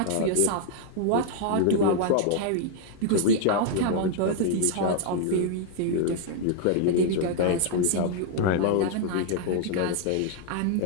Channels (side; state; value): both; different; correlation 0.00